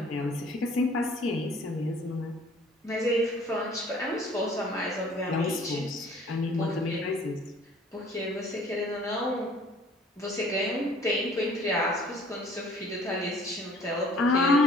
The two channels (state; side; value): normal; both; correlation 0.54